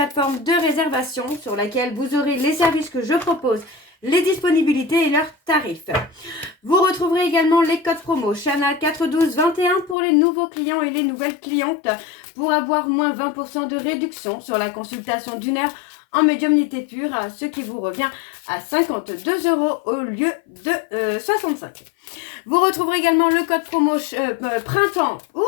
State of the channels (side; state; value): right; drops out; at 10.0 s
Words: de réservation sur laquelle vous aurez les services que je propose, les disponibilités et leurs tarifs. Vous retrouverez également les codes promo Chana 41221 pour les nouveaux clients et les nouvelles clientes pour avoir moins 20% de réduction sur la consultation d'une heure en médiumnité pure, ce qui vous revient à 52 € au lieu de 65. Vous retrouverez également le code promo